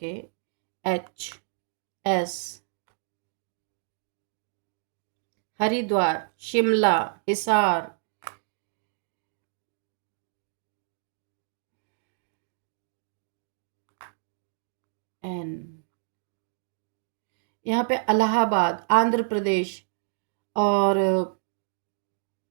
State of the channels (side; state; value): left; silent; digital silence